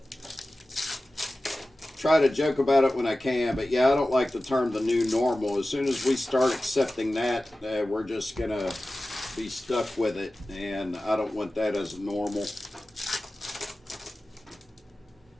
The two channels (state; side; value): normal; both; correlation 0.95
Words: try to joke about it when I can. But yeah, I don't like the term the new normal. As soon as we start accepting that, we're just going to be stuck with it. And I don't want that as normal.